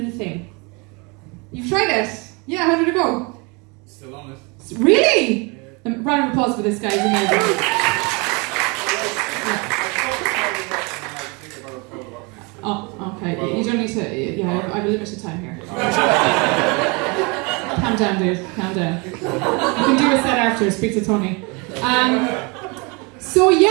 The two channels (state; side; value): quieter; left; 29.5 dB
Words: thing. You've tried it? Yeah, how did it go? Still on it. Really? Round of applause for this guy, he's amazing. Oh, okay, you don't need to, yeah, I have a limited time here. Calm down, dude. Calm down. You can do a set after. Speak to Tony. So